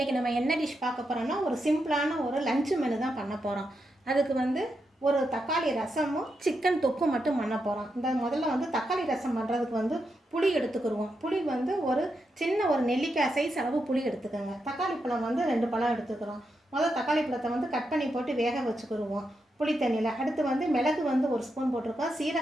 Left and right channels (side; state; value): both; normal; correlation 0.84